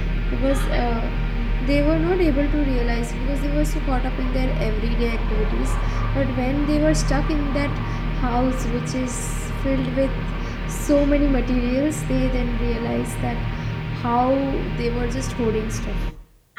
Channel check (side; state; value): both; identical; correlation 1.00